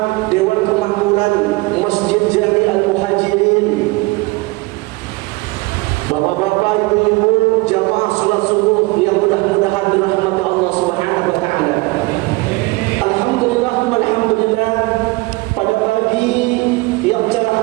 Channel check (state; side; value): quieter; left; 23.7 dB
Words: Dewan Kemakmuran Masjid Jami Al-Muhajirin, bapak-bapak, ibu-ibu, jamaah salat subuh yang mudah-mudahan dirahmati Allah Subhanahu wa taala. Alhamdulillah, alhamdulillah, pada pagi yang